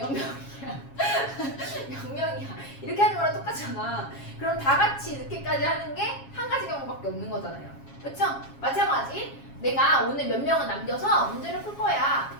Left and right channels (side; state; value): right; late; 7.3 ms